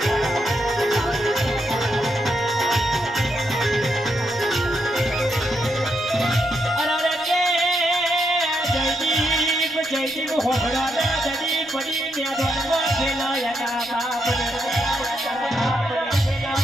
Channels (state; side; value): noise; right; rumble, 27 dB below the sound